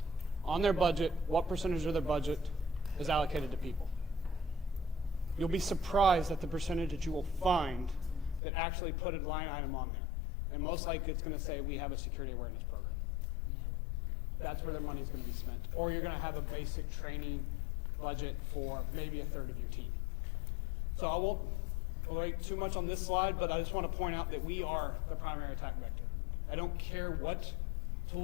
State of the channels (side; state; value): right; drops out; at 8.4 s